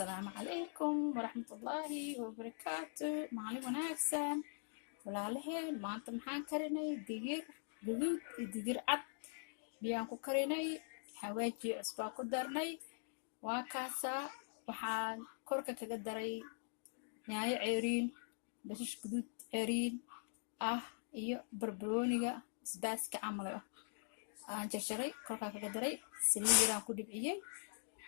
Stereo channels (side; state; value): right; silent; digital silence